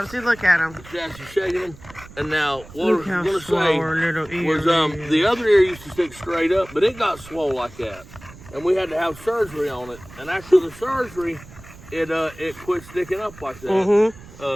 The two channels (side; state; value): right; noise; rumble, 19 dB below the sound